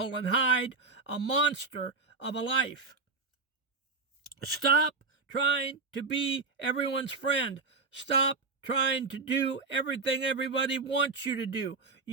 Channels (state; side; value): quieter; left; 4.3 dB